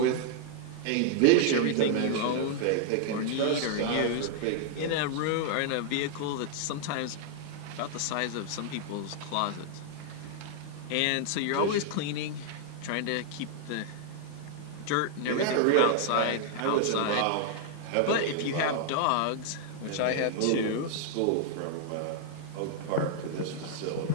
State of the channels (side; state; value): both; different; correlation 0.00